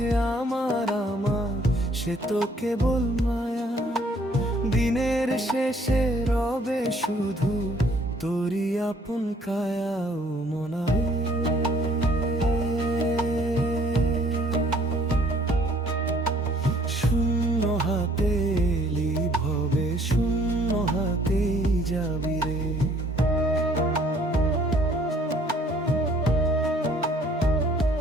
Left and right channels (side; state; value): both; normal; correlation 0.60